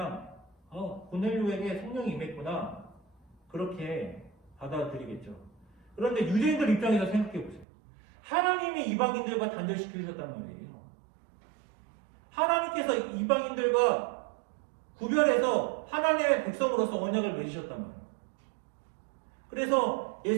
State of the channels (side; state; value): left; drops out; at 7.7 s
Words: 고넬료에게 성령이 임했구나 그렇게 받아들이겠죠. 그런데 유대인들 입장에서 생각해 보세요. 하나님이 이방인들과 단절시키셨단 말이에요. 하나님께서 이방인들과 구별해서 하나님의 백성으로서 언약을 맺으셨단 말이에요. 그래서